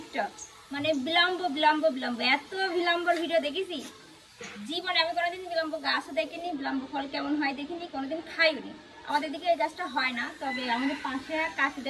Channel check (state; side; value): identical; both; correlation 1.00